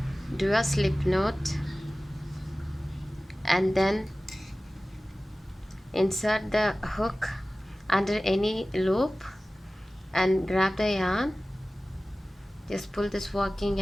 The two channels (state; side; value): normal; both; correlation 0.97